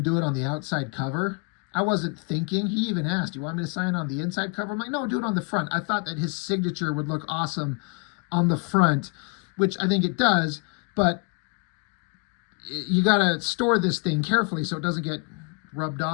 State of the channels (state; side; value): quieter; right; 31.3 dB